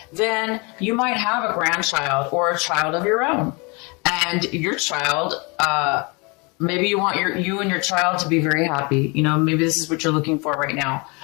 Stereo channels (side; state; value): right; quieter; 29.5 dB